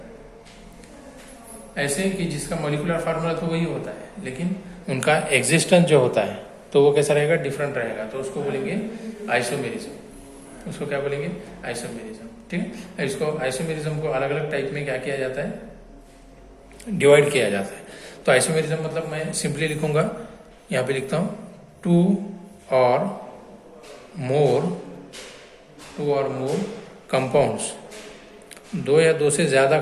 ऐसे कि जिसका मोलिकुलर फार्मूला तो वही होता है, लेकिन उनका एग्जिस्टेंस जो होता है तो वो कैसा रहेगा, डिफरेंट रहेगा। तो उसको बोलेंगे आइसोमेरिज्म। उसको क्या बोलेंगे, आइसोमेरिज्म। ठीक है। इसको आइसोमेरिज्म को अलग अलग टाइप में क्या किया जाता है, डिवाइड किया जाता है। तो आइसोमेरिज्म मतलब मैं सिंपली लिखूंगा, यहाँ पे लिखता हूँ, टू और मोर कंपाउंड्स, दो या दो से ज्यादा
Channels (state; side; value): identical; both; correlation 1.00